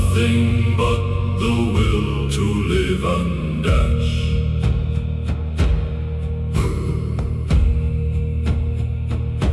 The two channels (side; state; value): both; identical; correlation 1.00